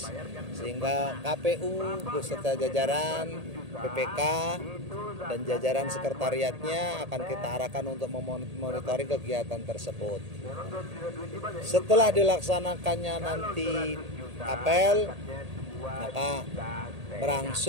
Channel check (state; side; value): late; left; 1.8 ms